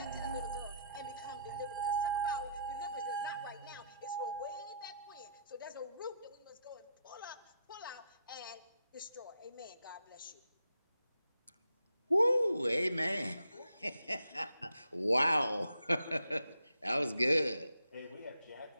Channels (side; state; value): both; inverted; correlation -0.77